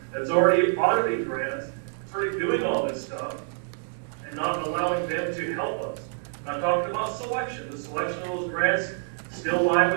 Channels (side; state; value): left; silent; digital silence